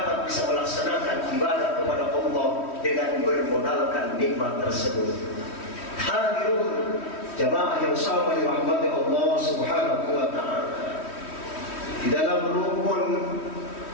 bisa melaksanakan ibadah kepada Allah dengan bermodalkan nikmat tersebut. Hadirun jamaah yang sama dirahmati Allah Subhanahu wa ta'ala, di dalam rukun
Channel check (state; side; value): late; right; 3.1 ms